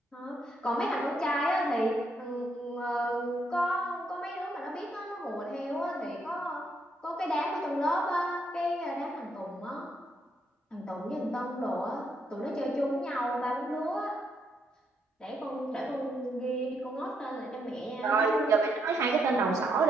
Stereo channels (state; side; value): normal; both; correlation 0.76